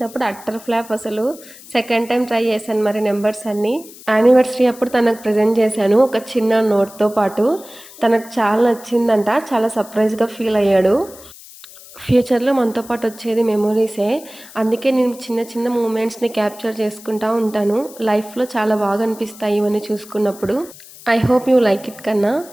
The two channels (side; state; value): left; noise; hiss, 19 dB below the sound